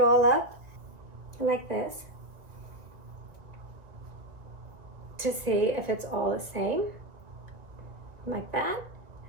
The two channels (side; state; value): left; late; 1.9 ms